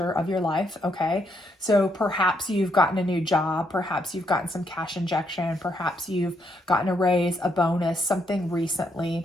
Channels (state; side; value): normal; both; correlation 0.75